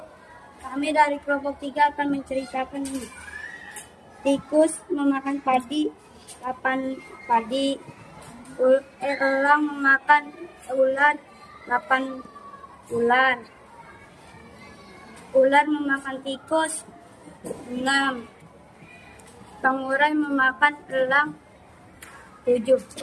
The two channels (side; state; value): both; identical; correlation 1.00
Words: Kami dari kelompok 3 akan menceritakan ini. Tikus memakan padi, 8 padi. Elang memakan ular, 8 ular. Ular memakan tikus, 6. Pengurai memakan elang, 7.